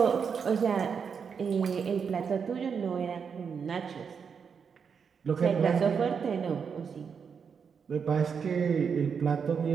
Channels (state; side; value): quieter; left; 6.4 dB